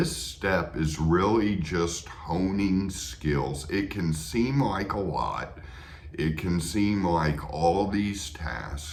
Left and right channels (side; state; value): both; identical; correlation 1.00